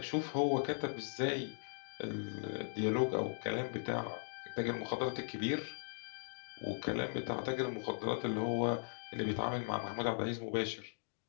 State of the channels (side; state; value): right; silent; digital silence